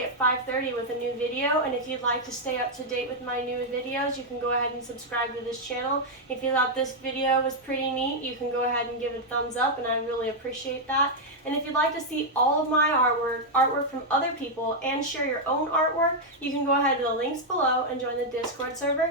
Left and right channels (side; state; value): both; normal; correlation -0.02